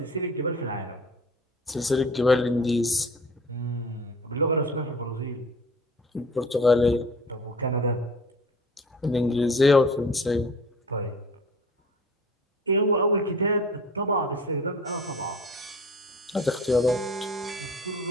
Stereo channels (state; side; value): normal; both; correlation 0.43